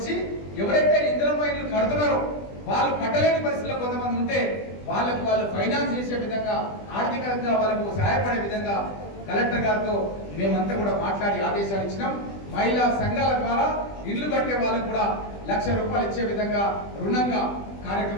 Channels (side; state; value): right; late; 20 ms